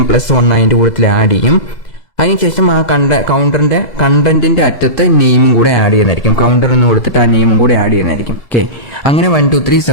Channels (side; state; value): right; late; 2.0 ms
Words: +1 അതിന്റെ കൂട്ടത്തിൽ ആഡ് ചെയ്യും. അതിനുശേഷം ആ കൗണ്ടറിന്റെ കണ്ടന്റിന്റെ അറ്റത്ത് നെയിമും കൂടെ ആഡ് ചെയ്യുന്നതായിരിക്കും. കൗണ്ടർ എന്ന് കൊടുത്തിട്ട് ആ നെയിമും കൂടെ ആഡ് ചെയ്യുന്നതായിരിക്കും. ഓക്കെ, അങ്ങനെ 1 2 3